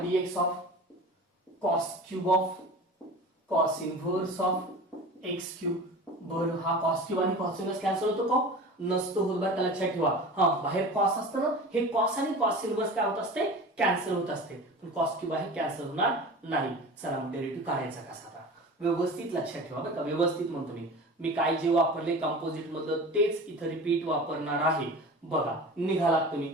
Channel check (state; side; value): normal; both; correlation 0.36